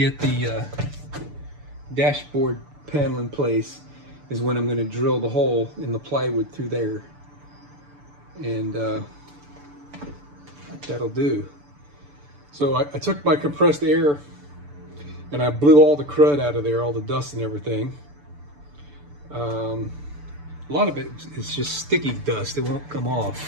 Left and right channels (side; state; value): left; late; 6.9 ms